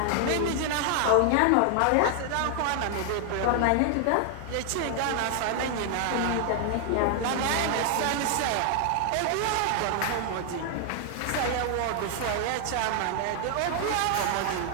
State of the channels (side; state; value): both; different; correlation 0.00